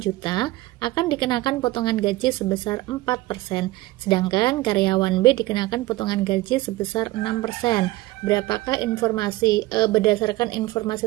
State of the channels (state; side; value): quieter; left; 18.6 dB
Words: juta, akan dikenakan potongan gaji sebesar 4%, sedangkan karyawan B dikenakan potongan gaji sebesar 6%. Berapakah informasi berdasarkan informasi